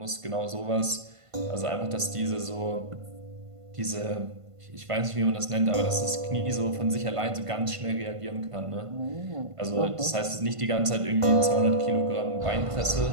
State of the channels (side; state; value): left; late; 1.5 ms